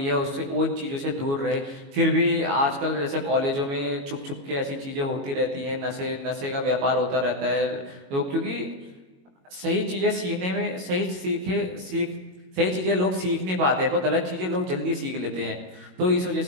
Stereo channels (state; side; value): late; left; 22 ms